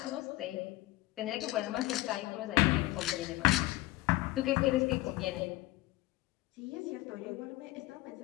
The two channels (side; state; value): right; quieter; 18.5 dB